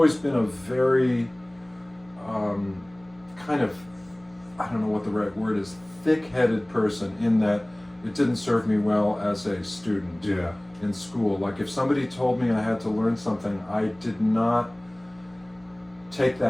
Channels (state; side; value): noise; right; hum, 28 dB below the sound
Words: been a very kind of, I don't know what the right word is, thick-headed person, in that it didn't serve me well as a student in school. Like if somebody told me I had to learn something, I did not take